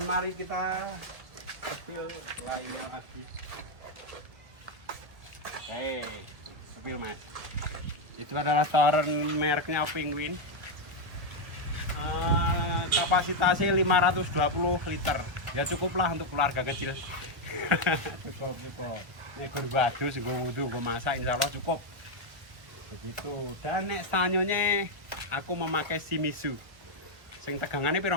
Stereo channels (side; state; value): left; late; 1.4 ms